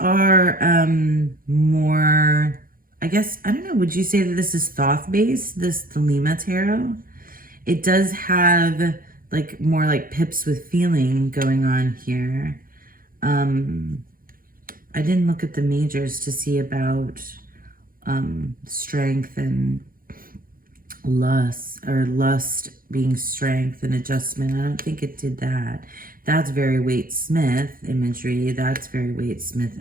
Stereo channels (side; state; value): left; late; 0.41 ms